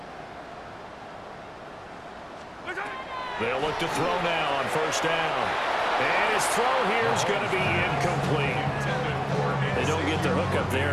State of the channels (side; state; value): both; identical; correlation 1.00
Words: They'll look to throw now on 1st down. And his throw here is going to be incomplete. They don't get the hook up